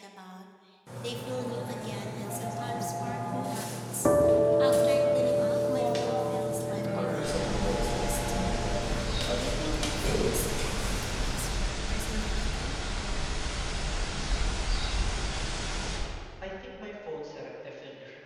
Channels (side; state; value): both; identical; correlation 1.00